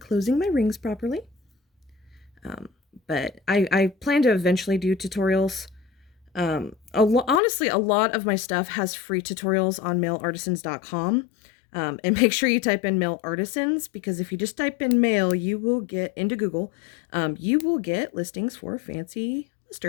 my rings properly. Um, but I plan to eventually do tutorials. Honestly, a lot of my stuff has free tutorials on mailartisans.com. And make sure you type in male artisans, because if you just type in male, you will get into Google. You will get listings for fancy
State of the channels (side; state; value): right; drops out; at 7.4 s